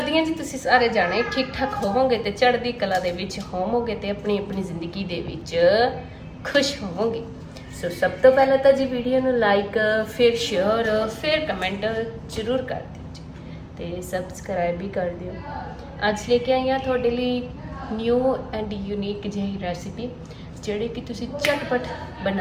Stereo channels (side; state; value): both; identical; correlation 1.00